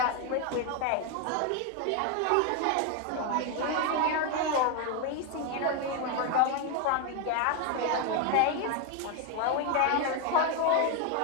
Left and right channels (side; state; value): both; different; correlation 0.01